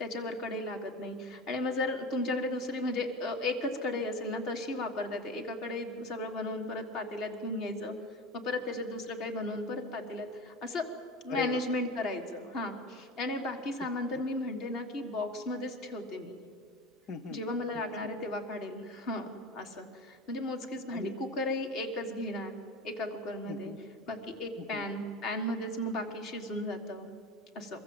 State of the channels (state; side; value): normal; both; correlation 0.30